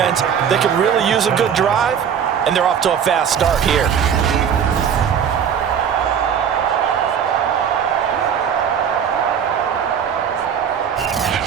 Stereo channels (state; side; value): quieter; left; 7.9 dB